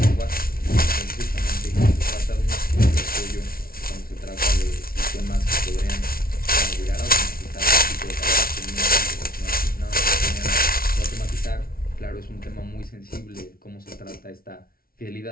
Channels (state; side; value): late; right; 0.43 ms